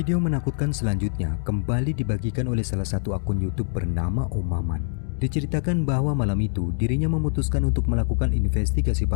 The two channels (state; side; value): silent; right; digital silence